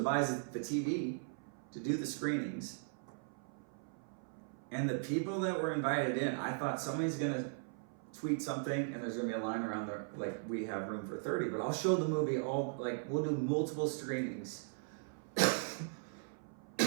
buys the TV to do the screenings. And the people that were invited in, I thought somebody's gonna tweet something and there's gonna be a line around there, like, we have room for 30, but I'll show the movie all, like, we'll do multiple screenings.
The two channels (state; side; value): silent; left; 52 dB below the other